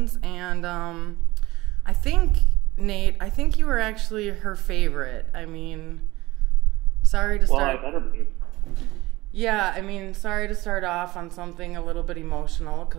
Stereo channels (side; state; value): left; quieter; 19.6 dB